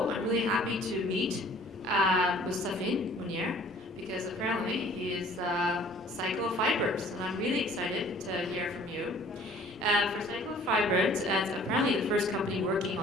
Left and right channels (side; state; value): both; normal; correlation 0.53